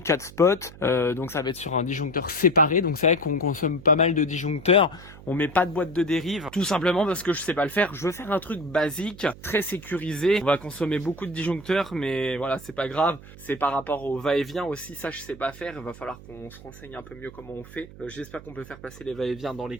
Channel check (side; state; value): right; noise; hum, 18 dB below the sound